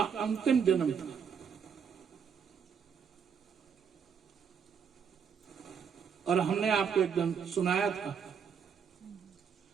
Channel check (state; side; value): quieter; left; 6.9 dB